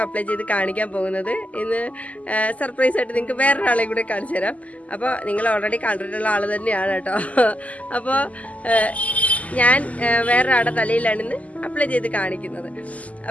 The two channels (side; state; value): right; late; 0.071 ms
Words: അപ്ലൈ ചെയ്ത് കാണിക്കാൻ പോകുന്നത്. ഇന്ന് സർപ്രൈസ് ആയിട്ട് നിങ്ങൾക്ക് വേറൊരാളെ കൂടെ കാണിച്ചു തരാം. അപ്പോൾ നിങ്ങൾ ഓൾറെഡി കണ്ടിട്ടുള്ള ആൾ തന്നെയാണ് കേട്ടോ. അപ്പോൾ ഞാൻ വേറൊരാളുടെ തലയിലാണ് ഇന്ന് അപ്ലൈ ചെയ്ത് കാണിക്കുന്നത്.